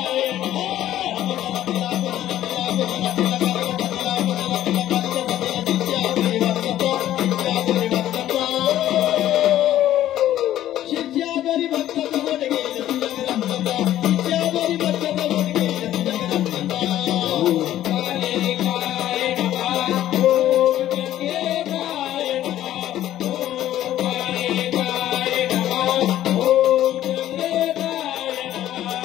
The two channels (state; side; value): quieter; right; 12.8 dB